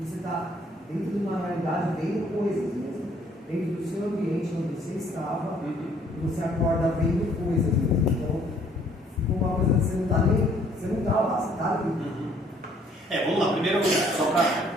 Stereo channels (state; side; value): normal; both; correlation 0.62